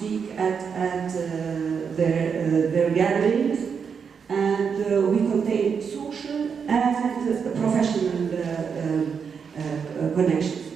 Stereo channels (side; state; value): left; quieter; 6.4 dB